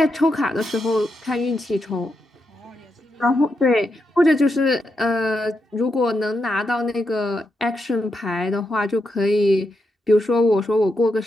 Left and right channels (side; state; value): both; normal; correlation 0.84